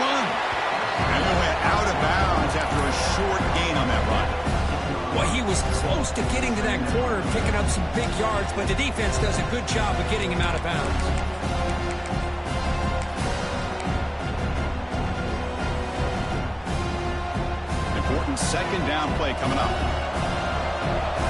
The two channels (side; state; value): both; identical; correlation 1.00